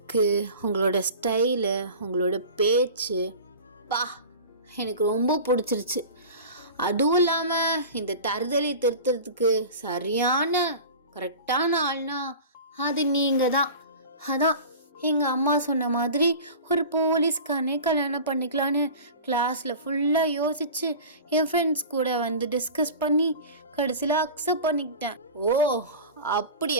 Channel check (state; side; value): inverted; both; correlation -0.36